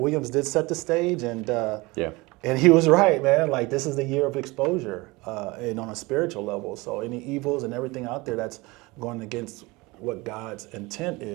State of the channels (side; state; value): left; quieter; 23.3 dB